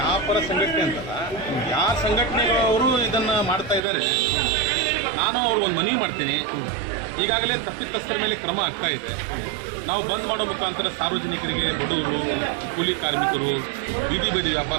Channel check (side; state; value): left; drops out; at 3.8 s